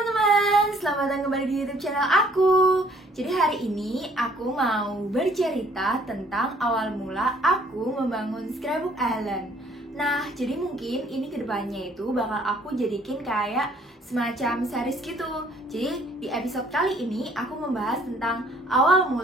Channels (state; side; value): normal; both; correlation 0.60